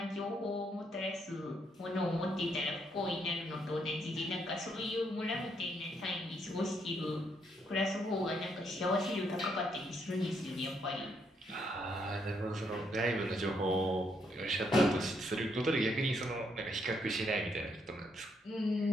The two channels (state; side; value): normal; both; correlation 0.74